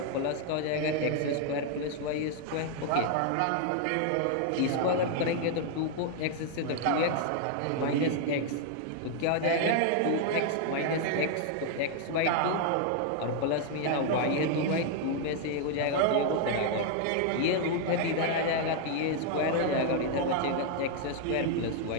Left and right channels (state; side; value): different; both; correlation 0.00